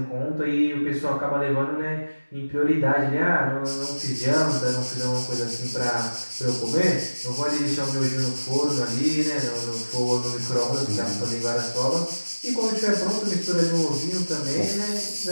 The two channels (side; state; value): both; inverted; correlation -1.00